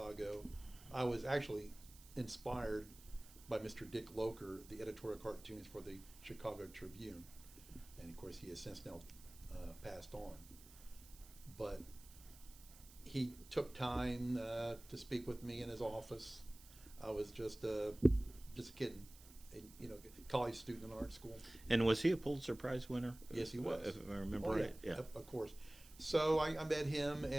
I was actually inspired by Mr. Dick Loker, the editorial cartoons for the Chicago Tribune, and of course he has since now passed on. But he took time to speak with me in his office. I was just a kid, college student in art school. And was he a Pulitzer Prize winner? Yes, he was. If I remember right. Yeah, of course. So I met him,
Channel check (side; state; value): right; noise; hiss, 20 dB below the sound